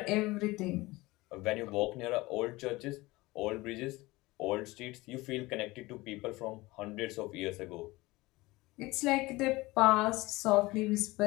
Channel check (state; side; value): quieter; right; 20.9 dB